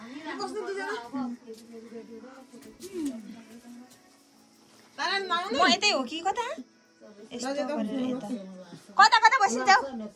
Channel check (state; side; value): identical; both; correlation 1.00